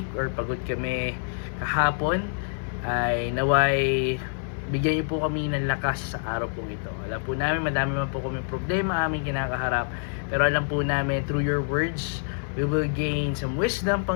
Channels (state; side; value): silent; right; digital silence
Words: or pagod kami kahapon, ay naway bigyan niyo po kami ng lakas sa araw pong ito. Alam po namin madami man po kami problema aming kinakaharap, pero alam po namin through your words we will gain some wisdom,